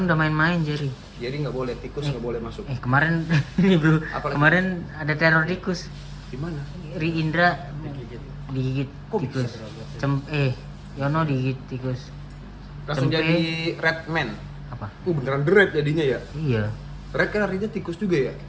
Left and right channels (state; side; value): identical; both; correlation 1.00